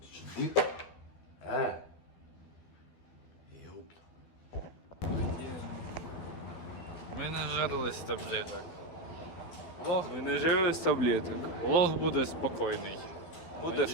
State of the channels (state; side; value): late; right; 12 ms